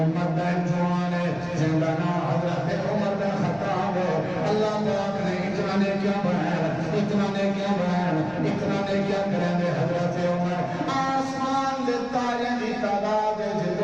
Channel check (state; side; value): noise; right; rumble, 22 dB below the sound